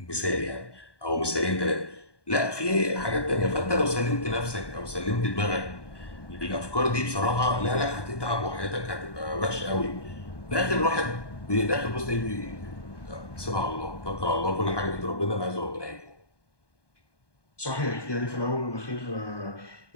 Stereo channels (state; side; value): late; right; 1.2 ms